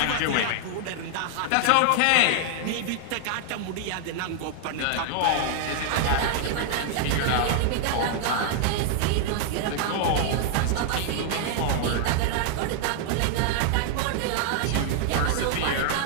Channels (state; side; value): different; both; correlation -0.01